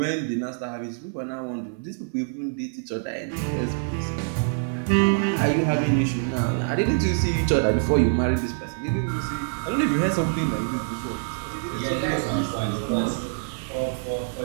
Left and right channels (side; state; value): left; silent; digital silence